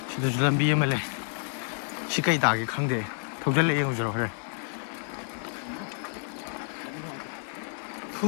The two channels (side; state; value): right; silent; 55 dB below the other